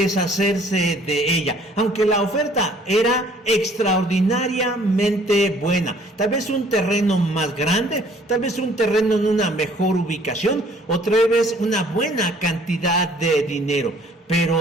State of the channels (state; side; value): normal; both; correlation 0.57